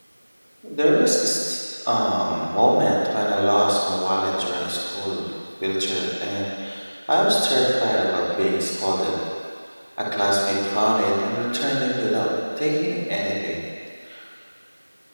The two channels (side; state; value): both; inverted; correlation -1.00